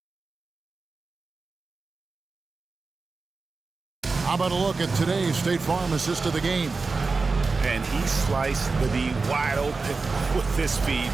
How about a look at today's State Farm assist of the game? And he sliced the D wide open with this speed.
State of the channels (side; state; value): left; quieter; 4.1 dB